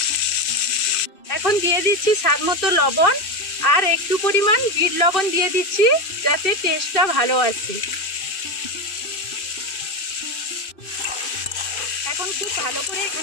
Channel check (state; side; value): late; right; 2.6 ms